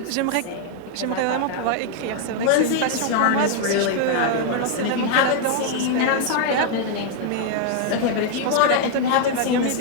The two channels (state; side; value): different; both; correlation 0.00